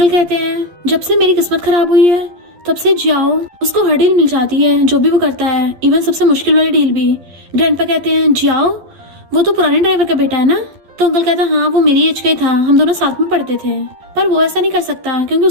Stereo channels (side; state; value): left; late; 12 ms